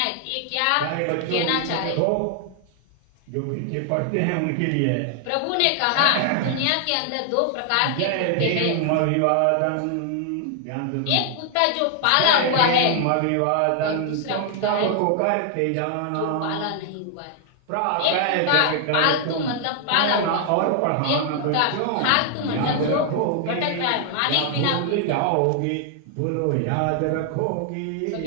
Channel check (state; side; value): different; both; correlation 0.00